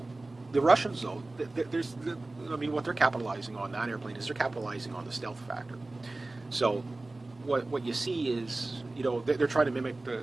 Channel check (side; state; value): left; quieter; 3.0 dB